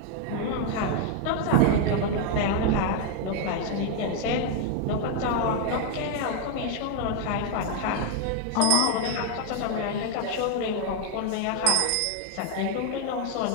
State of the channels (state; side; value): different; both; correlation 0.01